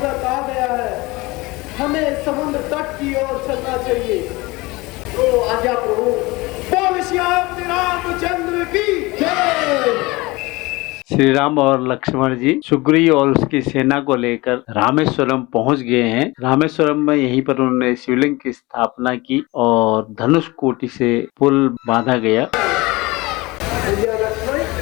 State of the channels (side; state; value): right; quieter; 22.4 dB